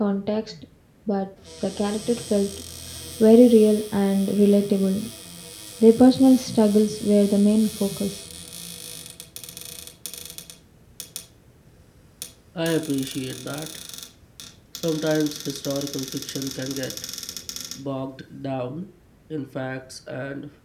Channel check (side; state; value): both; identical; correlation 1.00